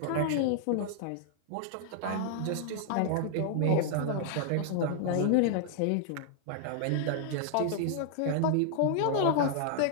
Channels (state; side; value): different; both; correlation -0.01